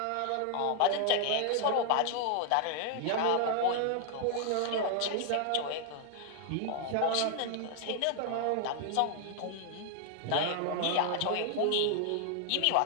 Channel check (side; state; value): both; different; correlation 0.00